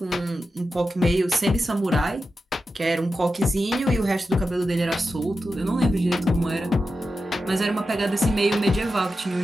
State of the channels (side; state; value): both; normal; correlation 0.91